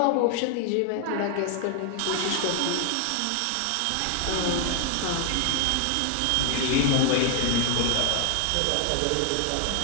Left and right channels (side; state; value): both; different; correlation 0.00